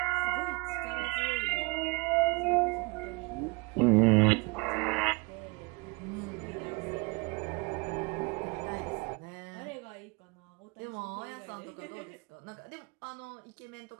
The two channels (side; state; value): left; quieter; 28.3 dB